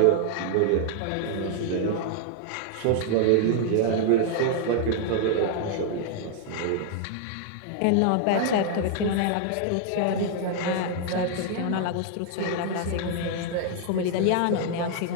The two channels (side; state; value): both; different; correlation 0.00